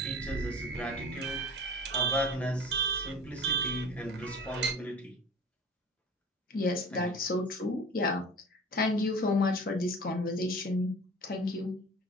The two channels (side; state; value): both; normal; correlation 0.41